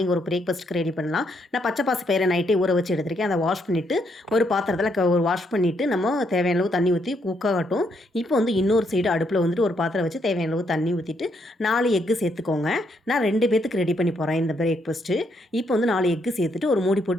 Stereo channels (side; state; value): both; normal; correlation 0.75